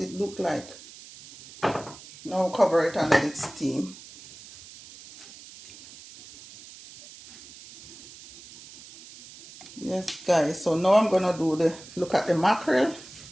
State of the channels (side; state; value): right; noise; hiss, 18 dB below the sound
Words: looked like. Now cover it and let it steam. Yes guys, so now I'm gonna look at the mackerel.